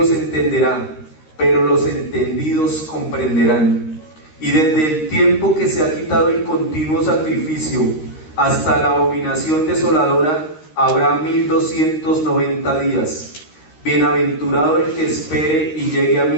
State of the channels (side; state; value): right; late; 13 ms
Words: entenderá, pero los entendidos comprenderán. Y desde el tiempo que se ha quitado el continuo sacrificio hasta la abominación desoladora habrá 1290 días. Bienaventurado el que espere y llegue a